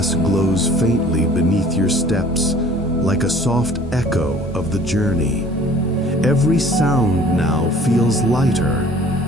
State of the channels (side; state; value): both; normal; correlation 0.51